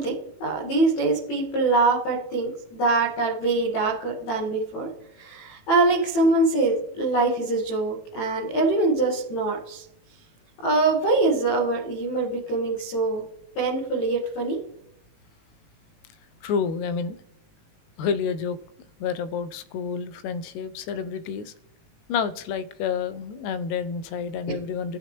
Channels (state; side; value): late; right; 18 ms